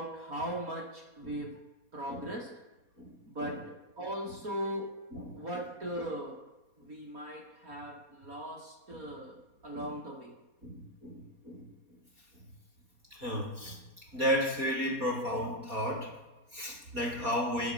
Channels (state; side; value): late; left; 4.2 ms